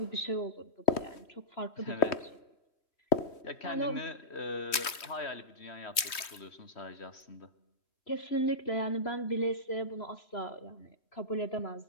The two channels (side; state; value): right; late; 3.2 ms